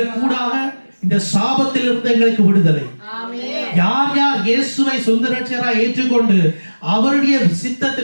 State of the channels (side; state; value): both; inverted; correlation -1.00